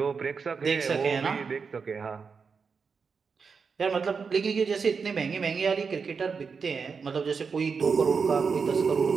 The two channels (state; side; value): quieter; left; 5.5 dB